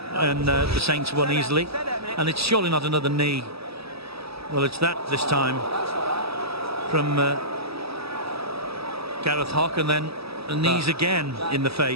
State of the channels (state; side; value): late; left; 0.77 ms